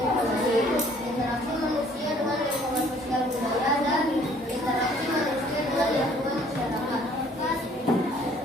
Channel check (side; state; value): both; normal; correlation 0.58